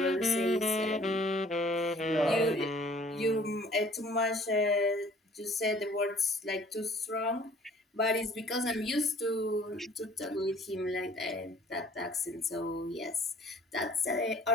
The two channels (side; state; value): both; normal; correlation 0.54